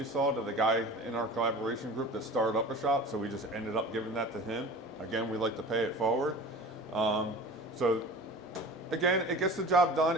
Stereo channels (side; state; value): both; normal; correlation 0.39